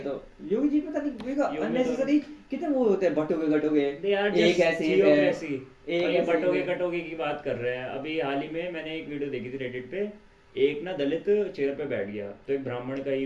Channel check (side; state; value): both; identical; correlation 1.00